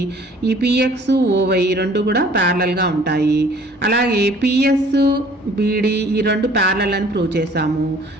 ఈ PX OY రెండు కూడా ప్యారలల్గా ఉంటాయి. అలాగే PS BD ఈ రెండు ప్యారలల్ అని ప్రూవ్ చేసాము.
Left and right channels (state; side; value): normal; both; correlation 0.54